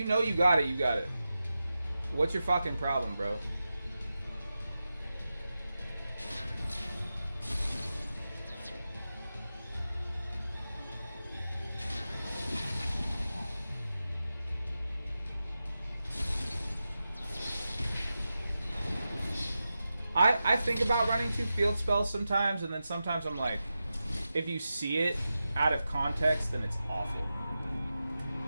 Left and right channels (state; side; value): inverted; both; correlation -0.92